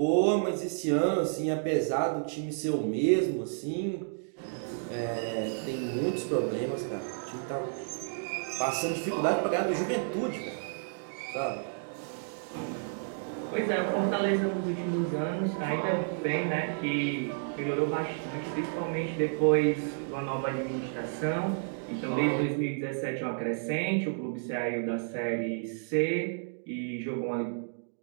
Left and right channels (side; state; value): left; silent; digital silence